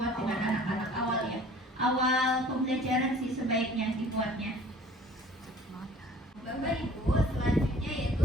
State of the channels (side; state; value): both; normal; correlation 0.49